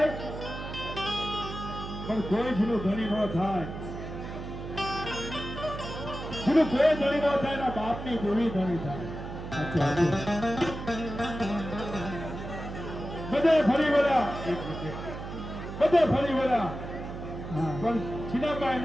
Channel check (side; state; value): right; noise; hum, 9 dB below the sound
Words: પણ કોઈ જેનું ધણી ન થાય, જેનું કોઈ ધણી ન થાય એના બાપની દેવી ધણી થાય. બધે ફરી વળ્યા, બધે ફરી વળ્યા પણ છીનાબાઈ